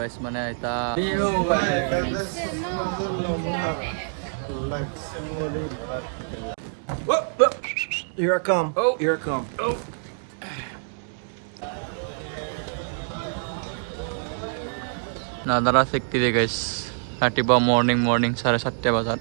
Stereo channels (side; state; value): left; silent; digital silence